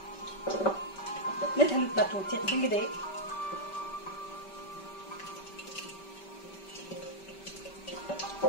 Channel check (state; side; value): late; right; 5.2 ms